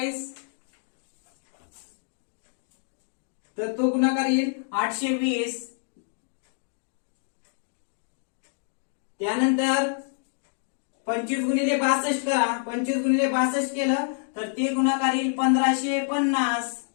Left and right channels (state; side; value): silent; right; digital silence